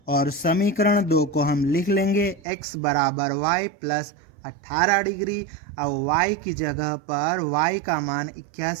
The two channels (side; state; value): left; drops out; at 2.4 s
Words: और समीकरण 2 को हम लिख लेंगे x बराबर y प्लस 18 डिग्री। अब y की जगह पर y का मान